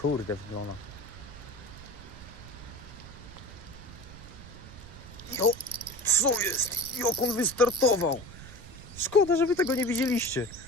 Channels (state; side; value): noise; right; rumble, 15 dB below the sound